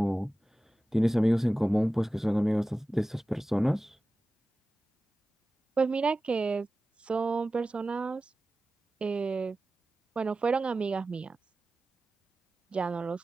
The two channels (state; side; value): normal; both; correlation 0.96